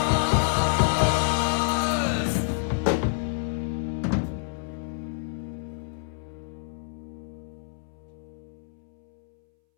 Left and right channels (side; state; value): right; silent; 60 dB below the other